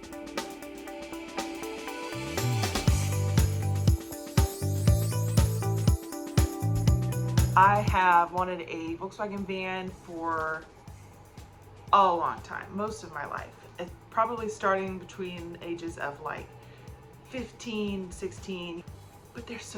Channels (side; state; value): both; identical; correlation 1.00